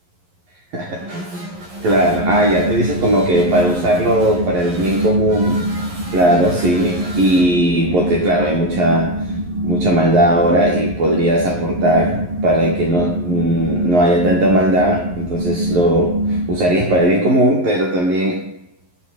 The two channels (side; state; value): left; late; 11 ms